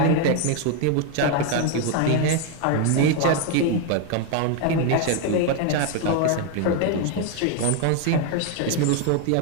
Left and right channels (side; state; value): both; different; correlation 0.01